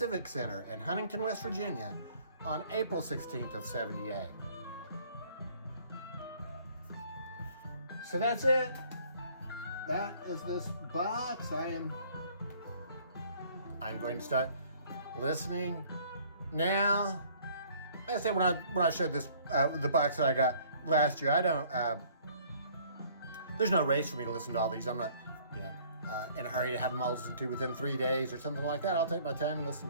Center in Huntington, West Virginia on April 16th of '78. So that's it. That is this box. I'm going to start listening now. Like I said, when I showed this the box that I got last year, I don't. There's no race for me to listen to all these. I'm not, in a hurry to have them all listened to within 3 days or something like that. I'll take my time and listen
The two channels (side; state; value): both; inverted; correlation -0.57